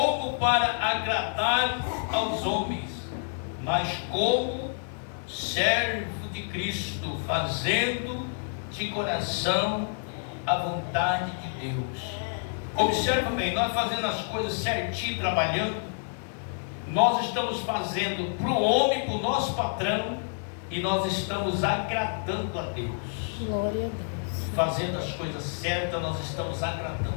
para agradar aos homens, mas como servo de Cristo, fazendo de coração a vontade de Deus. Observa bem, nós fazendo as coisas certinho, trabalhando, nós estamos fazendo para o homem, para o nosso patrão, e nós estamos agradando a Deus. Glória a Deus. Fazendo as coisas certas, nós estamos agradando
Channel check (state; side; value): silent; right; digital silence